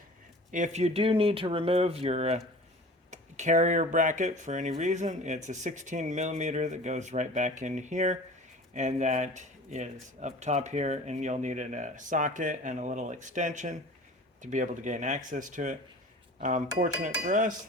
if you do need to remove your carrier bracket for any reason, it's a 16 millimeter that goes right back in here, and that is up top here, and you'll need a socket and a little extension to be able to gain access to it. Fortunate for us,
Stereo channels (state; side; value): normal; both; correlation 0.41